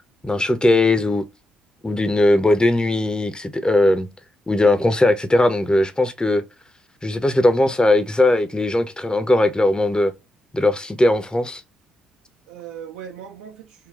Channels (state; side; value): normal; both; correlation 0.88